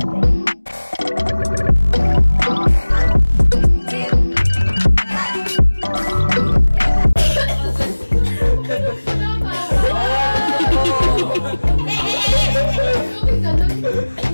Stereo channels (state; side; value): inverted; both; correlation -1.00